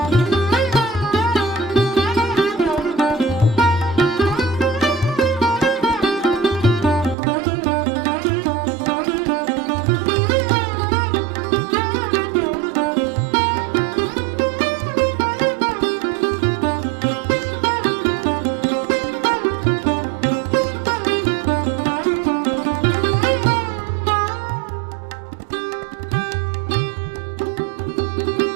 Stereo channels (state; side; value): drops out; left; at 7.2 s